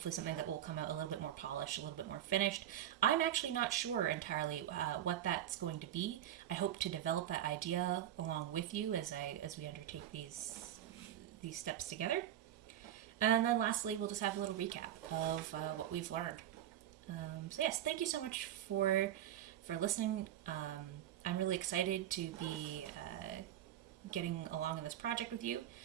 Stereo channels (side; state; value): left; quieter; 11.4 dB